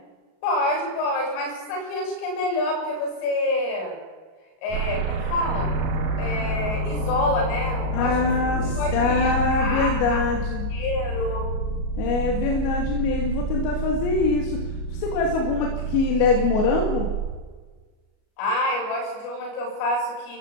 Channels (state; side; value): late; right; 37 ms